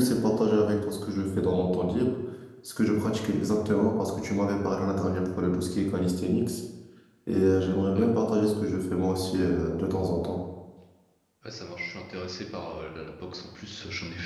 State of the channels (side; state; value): both; identical; correlation 1.00